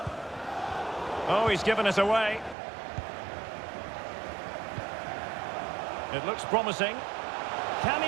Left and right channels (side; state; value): left; drops out; at 2.6 s